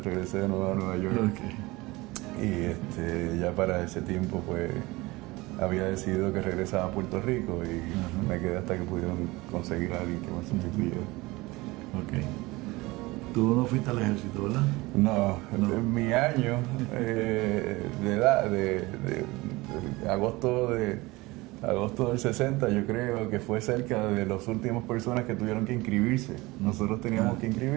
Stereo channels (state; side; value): quieter; left; 21.6 dB